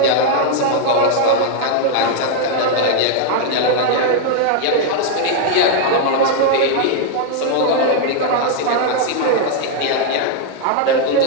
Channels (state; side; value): different; both; correlation 0.00